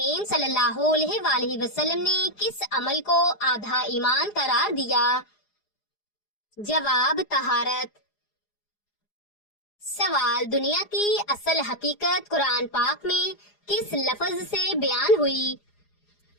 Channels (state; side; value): late; right; 4.8 ms